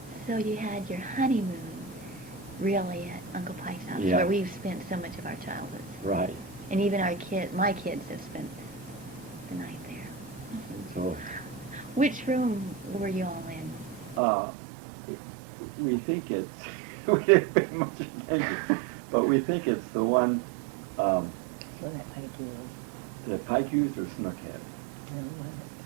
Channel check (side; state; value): left; drops out; at 14.2 s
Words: So you had your honeymoon really at Uncle Pike's house, Yeah. where we've spent so much of our childhood. Right. And even my kids have spent the night there. And so Which room were you all in? we think it's, we didn't pay much attention, but we think it's the one So that Pike was. that Pike used or Snook had. No, that